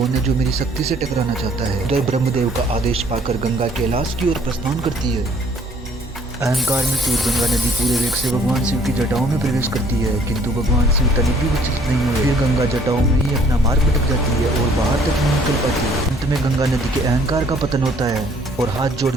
है जो मेरी शक्ति से टकराना चाहता है। तो ब्रह्मदेव का आदेश पाकर गंगा कैलाश की ओर प्रस्थान करती है। अहंकार में चूर गंगा नदी पूरे वेग से भगवान शिव की जटाओं में प्रवेश करती है, किंतु भगवान शिव तनिक भी विचलित नहीं हुए। फिर गंगा जटाओं में ही अपना मार्ग भटक जाती है और बाहर तक नहीं निकल पाती है। अंत में गंगा नदी के अहंकार का पतन होता है और हाथ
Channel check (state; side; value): normal; both; correlation 0.60